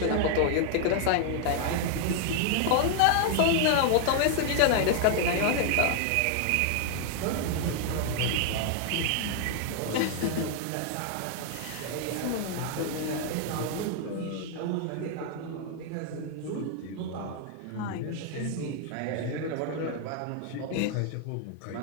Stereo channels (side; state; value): both; different; correlation 0.00